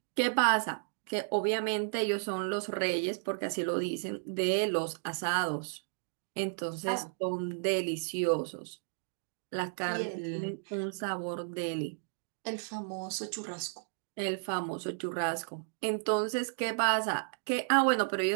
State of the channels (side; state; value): left; silent; digital silence